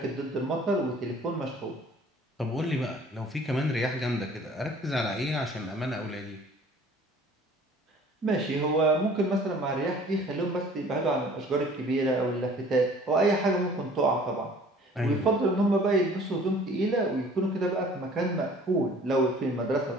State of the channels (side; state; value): both; normal; correlation 0.51